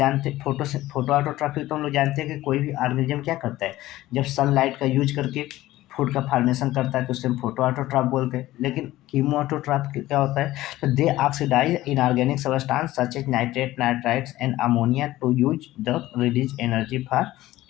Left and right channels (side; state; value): right; quieter; 16.1 dB